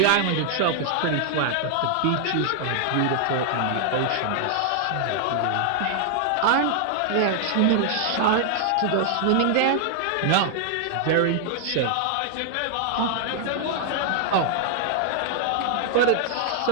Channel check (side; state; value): both; different; correlation 0.00